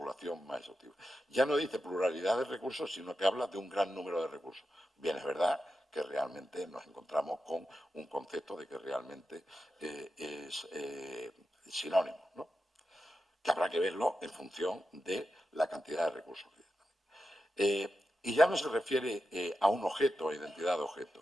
más exhaustiva. Ya no dice pluralidad de recursos, sino que habla de un gran número de recursos. Bien, es verdad que realmente nos encontramos con un concepto de que realmente es sinónimo, ¿no? Que habrá que verlo en función de la cantidad de recursos que y ya no se refiere a un objeto, a identidad de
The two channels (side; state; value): both; normal; correlation 0.90